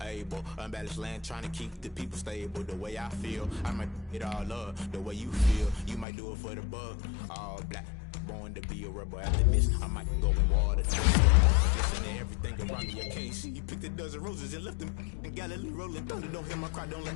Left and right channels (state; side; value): drops out; right; at 6.1 s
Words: Abel. Unbalanced land, trying to keep the people stable. The way I feel, I might it all up. The way you feel, you might do it for the bug. All black, born to be a rebel. After this, I might go in water. Listen to everything around me, I can't see. You picked a dozen roses and left them in Galilee rolling thunder. Don't hear my cry, don't